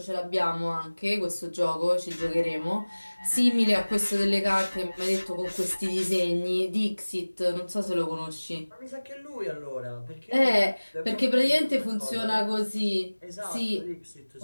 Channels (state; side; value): inverted; both; correlation -1.00